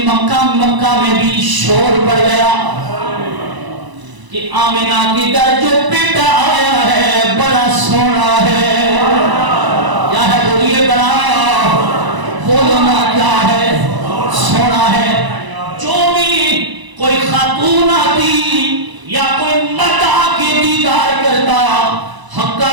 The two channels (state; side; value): late; left; 1.0 ms